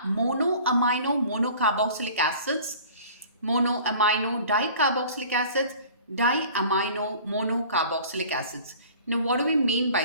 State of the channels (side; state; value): both; inverted; correlation -0.46